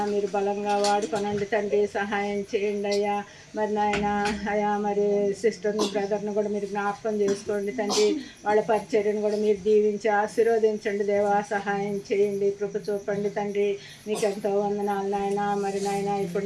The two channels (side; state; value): both; identical; correlation 1.00